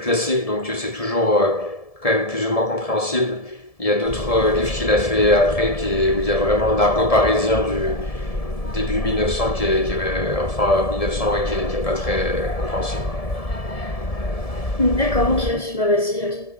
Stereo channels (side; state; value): right; late; 1.7 ms